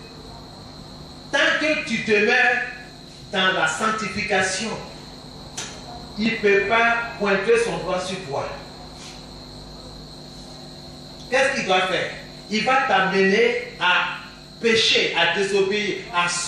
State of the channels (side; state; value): both; identical; correlation 1.00